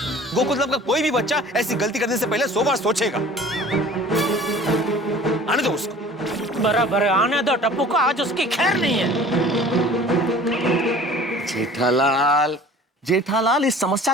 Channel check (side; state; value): both; normal; correlation 0.47